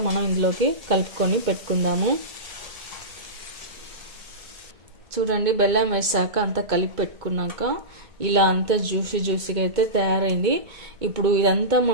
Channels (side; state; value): left; late; 2.2 ms